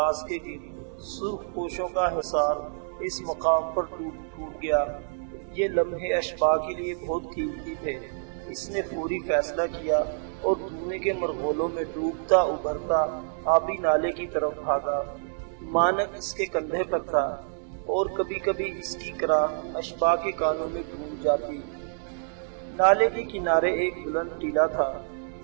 کے گرد سرخ پوشوں کا حصار اس مقام پر ٹوٹ گیا۔ یہ لمحے اشباح کے لیے بہت قیمتی تھے۔ اس نے فوری فیصلہ کیا اور دھوئیں کے مرغولوں میں ڈوبتا ابھرتا آبی نالے کی طرف بھاگا۔ مانک اس کے کندھے پر تھا اور کبھی کبھی اس کی کراہ اشباح کے کانوں میں گونج جاتی۔ نالے کے کنارے ایک بلند ٹیلا تھا۔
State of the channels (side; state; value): left; silent; digital silence